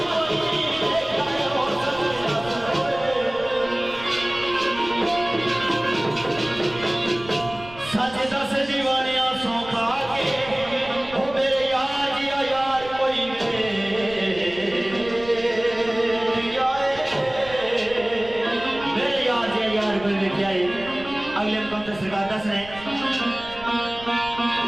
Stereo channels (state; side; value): noise; right; rumble, 18 dB below the sound